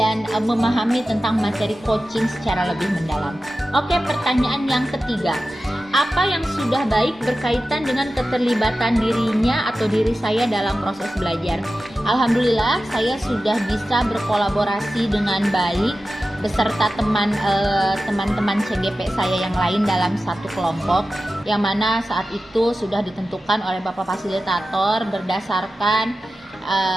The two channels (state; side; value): normal; both; correlation 0.94